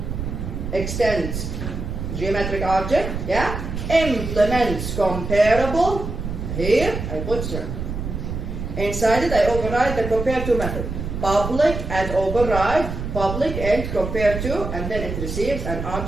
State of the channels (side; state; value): right; noise; rumble, 5 dB below the sound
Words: extends geometric object, yeah? Implements comparable, here I put circle. Inside it I override the compare to method. Public and override, public and compare to, and then it receives an